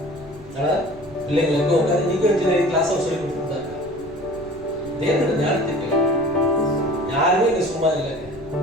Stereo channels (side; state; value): left; noise; rumble, 21 dB below the sound